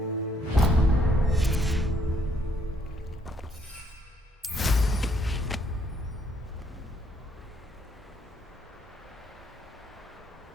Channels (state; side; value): normal; both; correlation 0.69